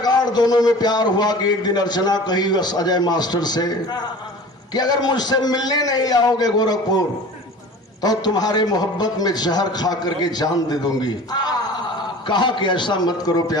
दोनों में प्यार हुआ कि एक दिन अर्चना कही बस अजय मास्टर से कि अगर मुझसे मिलने नहीं आओगे गोरखपुर तो तुम्हारे मोहब्बत में जहर खा करके जान दे दूंगी कहा कि ऐसा मत करो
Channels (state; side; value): normal; both; correlation 0.40